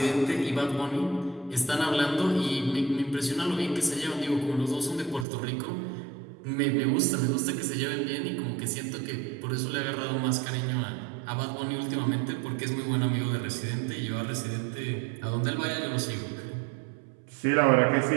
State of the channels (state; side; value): drops out; left; at 5.2 s